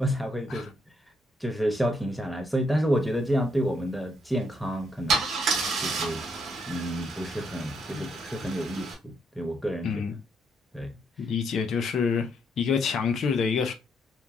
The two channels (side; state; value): both; normal; correlation 0.74